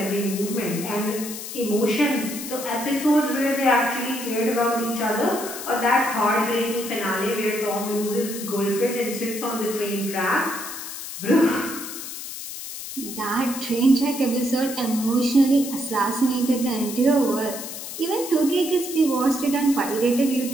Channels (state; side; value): noise; left; hiss, 9 dB below the sound